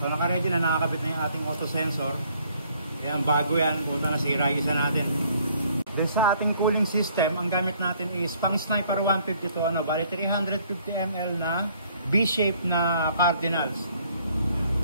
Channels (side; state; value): both; inverted; correlation -0.63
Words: naka-ready na, nakakabit na yung ating auto sensor. Ayan, bago yan, punta nasira yung isa natin. Then sa ating cooling system, ang gamit natin is pang Sniper 152, bali 350 ml na B-shape na Cardinals.